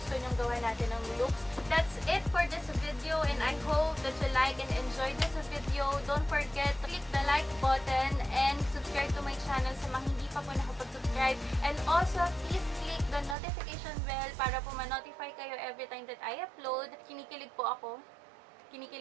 nyong gawa natin ng looks. That's it for this video, and I hope that you like and enjoy this video. Don't forget to click the like button and subscribe to my channel sa mga hindi pa po nakapag-subscribe. And also, please click the notification bell para po ma-notify kayo every time that I upload. Kinikilig po ako.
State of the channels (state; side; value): drops out; left; at 13.4 s